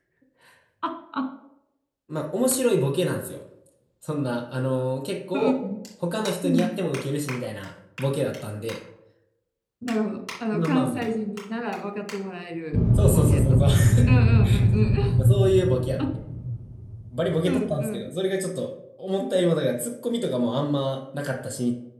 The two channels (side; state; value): both; identical; correlation 1.00